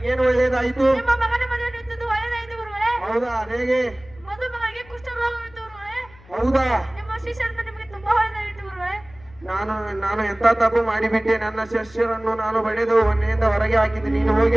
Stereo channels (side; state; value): left; noise; hum, 24 dB below the sound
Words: ಒಳ್ಳೆಯದಾಯಿತು? ಹೌದಾ? ಹೇಗೆ? ಹೌದಾ? ನಾನು ಎಂತ ತಪ್ಪು ಮಾಡಿಬಿಟ್ಟೆ? ನನ್ನ ಶಿಷ್ಯರನ್ನು ನಾನು ಬಡಿದು ಮನೆಯಿಂದ ಹೊರಗೆ ಹಾಕಿದ್ದೆ. ನೀನು ಹೋಗಿ